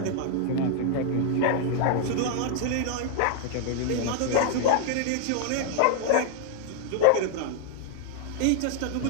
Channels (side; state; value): both; different; correlation 0.00